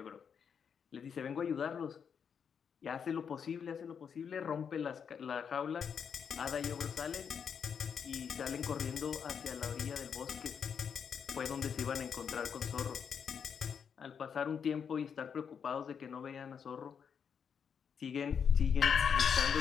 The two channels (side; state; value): right; quieter; 7.0 dB